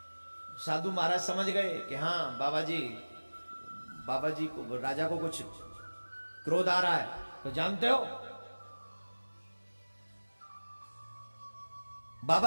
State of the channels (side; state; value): both; inverted; correlation -1.00